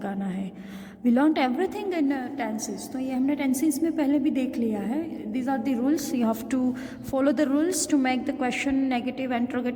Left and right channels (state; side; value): identical; both; correlation 1.00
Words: है. We learn everything in tenses. तो ये हमने टेंसेस में पहले भी देख लिया है. These are the rules. You have to follow the rules to make the question negative,